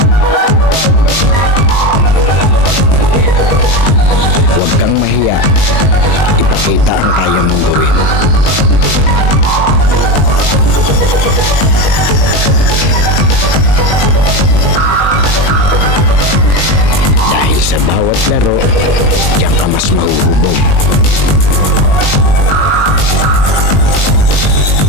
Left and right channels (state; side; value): late; right; 20 ms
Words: Huwag kang mahiya. Ipakita ang kaya mong gawin. Dahil sa bawat laro, diyan ka mas mahuhubog.